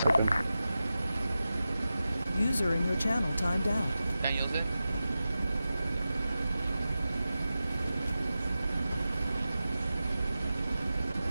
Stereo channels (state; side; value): inverted; both; correlation -0.93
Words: User in your channel timed out. Can you use it?